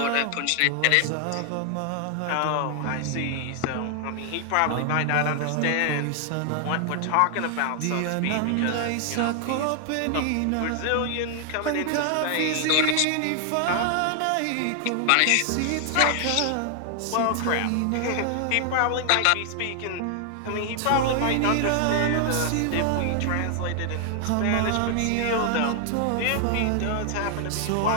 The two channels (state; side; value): different; both; correlation 0.00